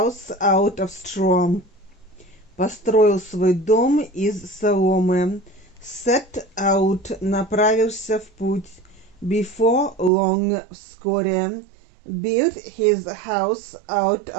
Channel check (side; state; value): left; drops out; at 10.1 s